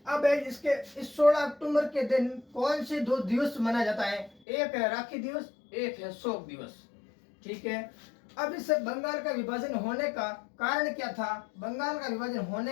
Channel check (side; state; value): right; drops out; at 4.3 s